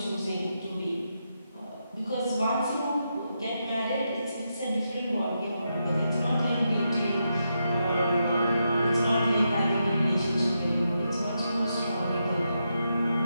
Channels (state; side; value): inverted; both; correlation -0.84